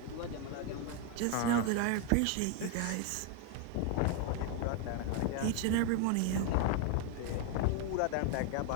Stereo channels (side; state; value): both; different; correlation 0.01